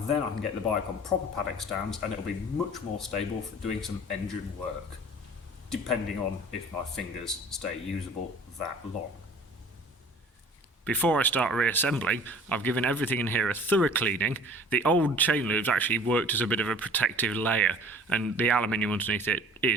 then I can get the bike on proper paddock stands and it'll be much more stable for doing some engine work, depending on if my fingers stay usable that long. Before I start reassembling, I've given everything in here a thorough cleaning. The old chain loops actually worked as a bit of a protective layer, and the aluminium underneath it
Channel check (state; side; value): normal; both; correlation 0.47